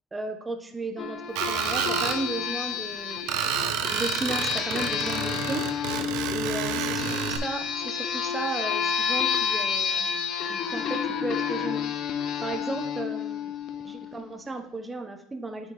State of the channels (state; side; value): normal; both; correlation 0.47